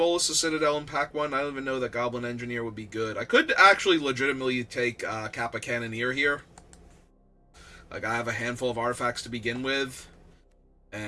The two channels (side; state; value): both; identical; correlation 1.00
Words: the Citadel in pack 1? I don't even know that Goblin Engineer would be good. I could actually legitimately take Kappa Cannoneer here. Like, I have a handful of artifacts to begin with,